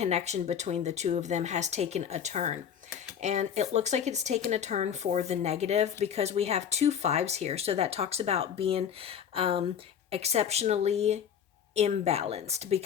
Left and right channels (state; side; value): quieter; right; 8.4 dB